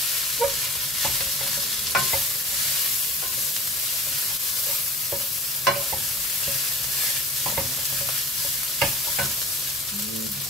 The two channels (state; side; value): normal; both; correlation 0.40